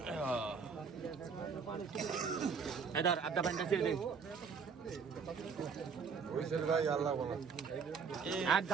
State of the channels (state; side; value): quieter; left; 5.8 dB